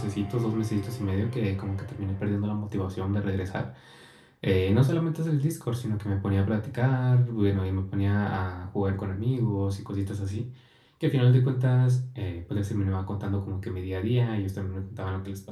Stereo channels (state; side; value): identical; both; correlation 1.00